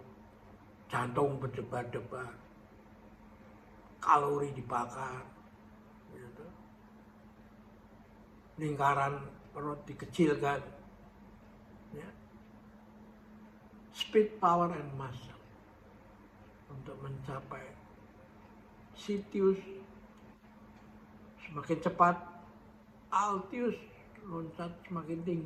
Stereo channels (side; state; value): both; identical; correlation 1.00